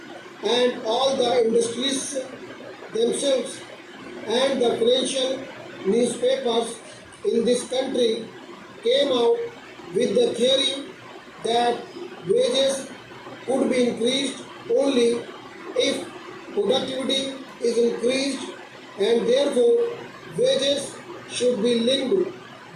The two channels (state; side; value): identical; both; correlation 1.00